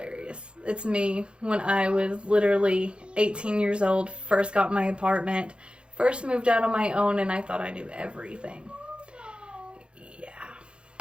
It's me when I was literally 18 years old, first got my apartment, first moved out on my own, and I thought I knew everything. Yeah.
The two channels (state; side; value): late; left; 0.056 ms